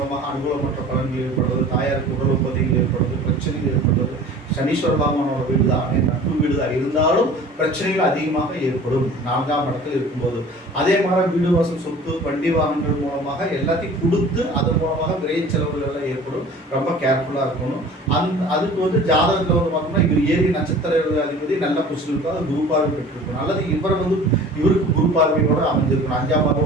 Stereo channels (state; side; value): normal; both; correlation 0.44